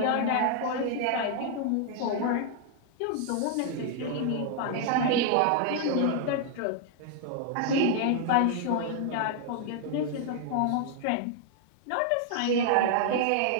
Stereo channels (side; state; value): both; different; correlation 0.00